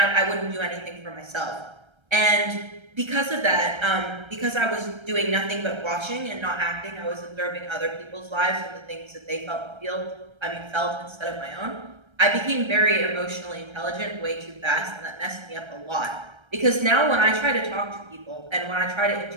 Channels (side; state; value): left; late; 1.3 ms